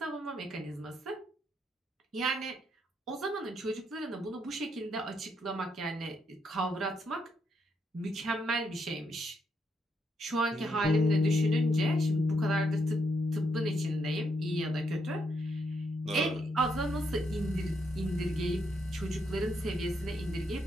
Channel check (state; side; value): normal; both; correlation 0.77